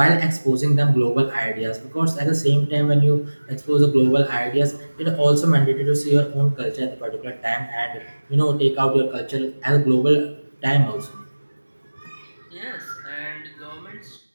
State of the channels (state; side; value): inverted; both; correlation -1.00